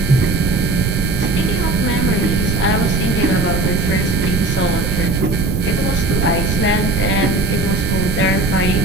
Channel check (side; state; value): right; noise; rumble, 1 dB below the sound